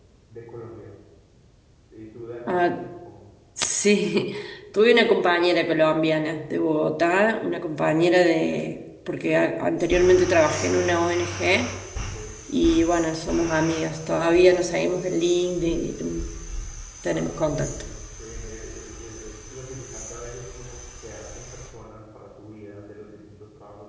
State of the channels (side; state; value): both; identical; correlation 1.00